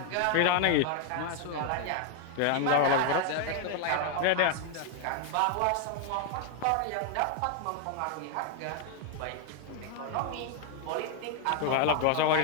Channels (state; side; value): different; both; correlation 0.00